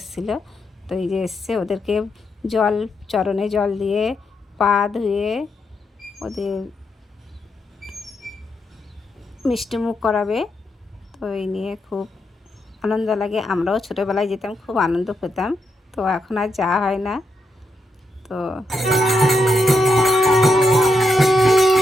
তো এই যে এসছে, ওদেরকে জল, চরণে জল দিয়ে পা ধুয়ে ওদের মিষ্টি মুখ করাবে। তো এই নিয়ে খুব আনন্দ লাগে। আমরাও ছোটোবেলায় যেতাম, খুব আনন্দ পেতাম। তো এখন আর যাওয়া হয় না। তো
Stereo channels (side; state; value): both; normal; correlation 0.82